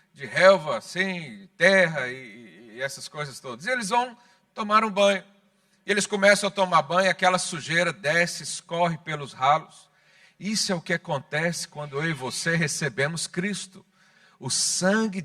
relva, assim, terra e essas coisas todas. E eles vão tomar um banho. E eles começam a tomar banho, aquela sujeira desce, escorre pelos ralos. Isso é o que acontece quando eu e você recebemos Cristo. O sangue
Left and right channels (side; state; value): both; identical; correlation 1.00